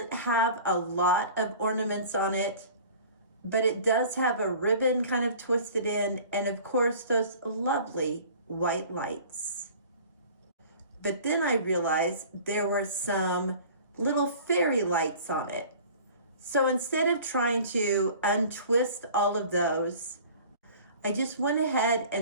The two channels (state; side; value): inverted; both; correlation -0.45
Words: have a lot of ornaments on it, but it does have a ribbon kind of twisted in, and of course those lovely white lights. But then I realized there were some little fairy lights on it. So instead of trying to untwist all of those, I just went ahead